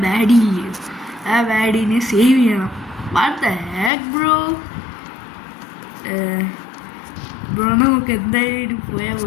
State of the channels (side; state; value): right; drops out; at 3.9 s